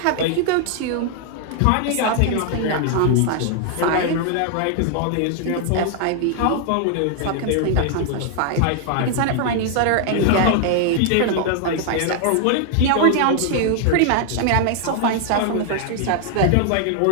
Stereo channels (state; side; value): different; both; correlation 0.00